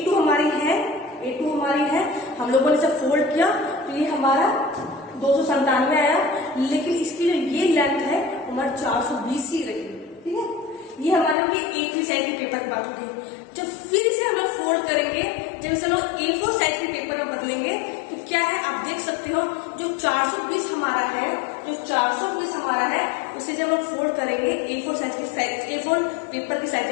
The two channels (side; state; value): right; drops out; at 11.4 s